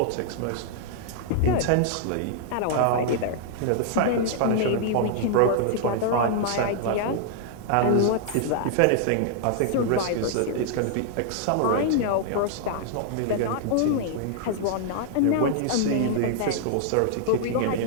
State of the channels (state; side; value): different; both; correlation -0.01